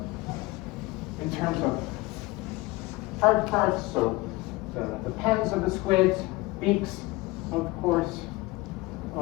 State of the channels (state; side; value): quieter; right; 21.2 dB